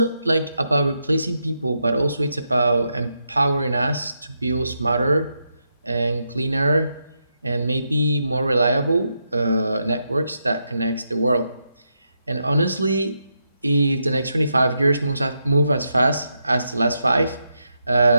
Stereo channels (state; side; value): inverted; both; correlation -0.83